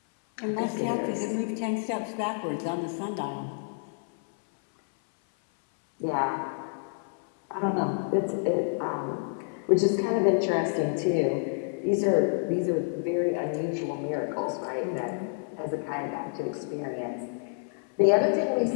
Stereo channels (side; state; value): right; silent; 59 dB below the other